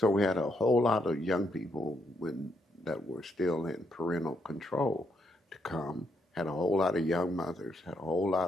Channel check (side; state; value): both; normal; correlation 0.77